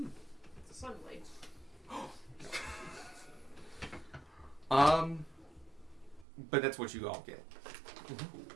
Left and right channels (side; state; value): left; drops out; at 6.2 s